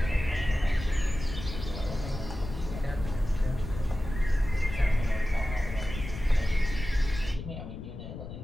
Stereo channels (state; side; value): noise; left; rumble, 9 dB below the sound